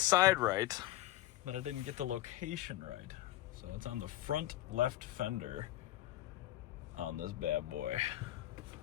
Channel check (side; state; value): right; quieter; 15.1 dB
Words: right, but I didn't get the location right. So it's on the front left fender on this bad boy.